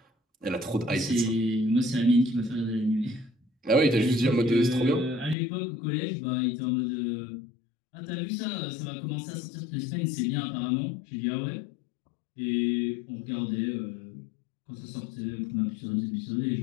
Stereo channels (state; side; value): drops out; right; at 5.4 s